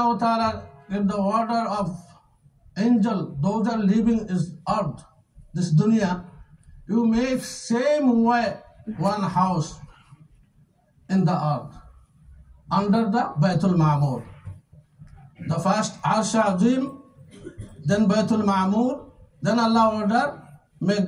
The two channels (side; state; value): both; identical; correlation 1.00